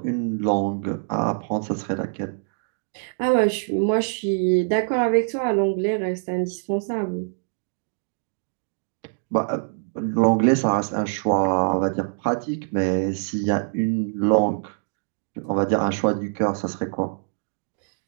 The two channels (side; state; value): left; silent; digital silence